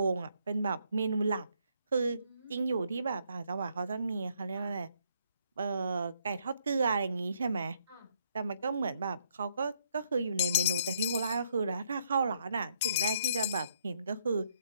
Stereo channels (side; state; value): both; inverted; correlation -0.70